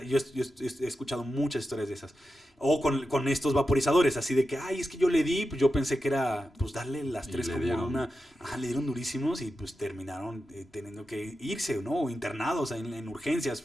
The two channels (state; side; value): normal; both; correlation 0.90